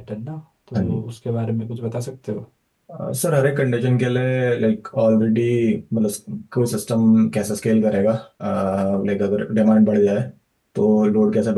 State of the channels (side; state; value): both; identical; correlation 1.00